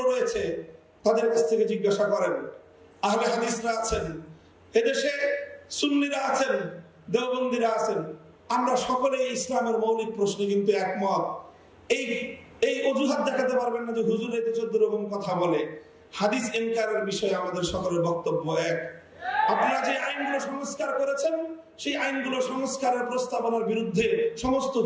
রয়েছে, তাদের কাছ থেকে জিজ্ঞাসা করেন। আহলে হাদিসরা আছেন, এদেশে সুন্নিরা আছেন, দেওবন্দিরা আছেন, আমরা সকলে ইসলামের মৌলিক প্রশ্নে কিন্তু একমত। এই অজুহাত দেখাতে পারবেন না যে হুজুর এতে 14 রকম কথা বলে। হাদিস ইনকারের বিষয়ে আমাদের সকলের বক্তব্য এক। আপনারা যে আইনগুলো সংস্কার করেছেন, সেই আইনগুলো সংস্কারের প্রস্তাবনার বিরুদ্ধে সমস্ত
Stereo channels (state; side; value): identical; both; correlation 1.00